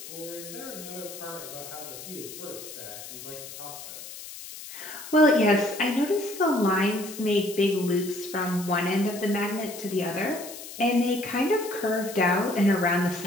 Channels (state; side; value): noise; left; hiss, 12 dB below the sound